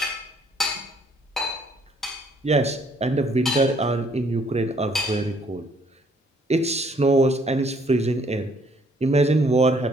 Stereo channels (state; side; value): normal; both; correlation 0.64